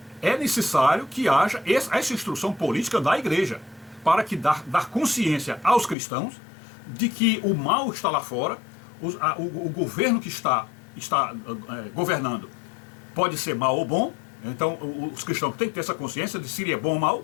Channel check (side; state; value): right; drops out; at 6.0 s